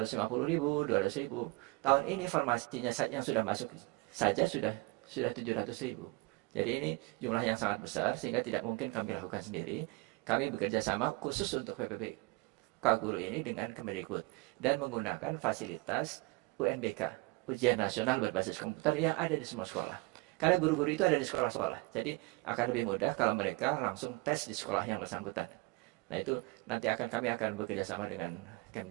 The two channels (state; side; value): quieter; left; 24.9 dB